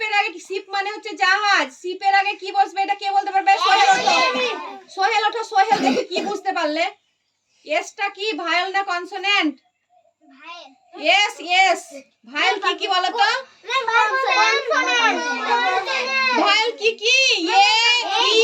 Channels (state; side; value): identical; both; correlation 1.00